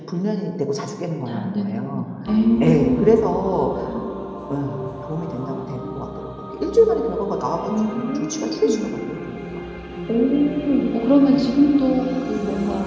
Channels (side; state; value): both; identical; correlation 1.00